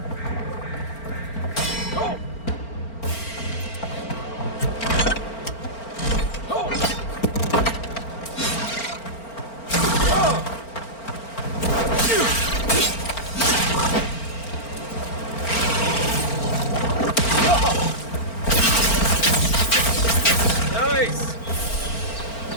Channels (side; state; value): right; late; 4.4 ms